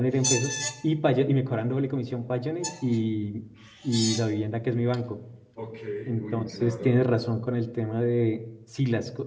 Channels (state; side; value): identical; both; correlation 1.00